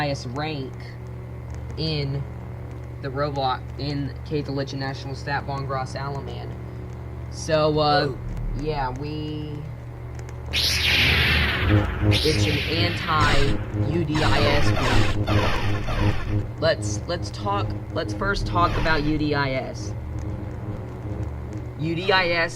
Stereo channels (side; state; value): both; identical; correlation 1.00